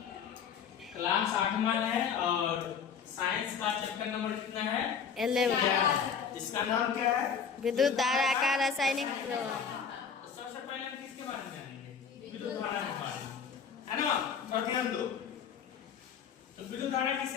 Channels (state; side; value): quieter; right; 6.8 dB